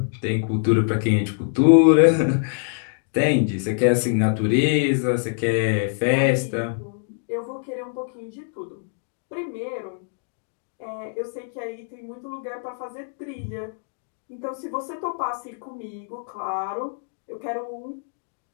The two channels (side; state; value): right; silent; digital silence